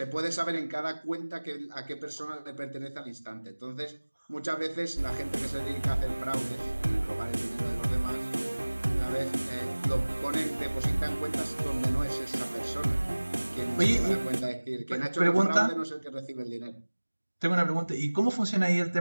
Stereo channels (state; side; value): inverted; both; correlation -1.00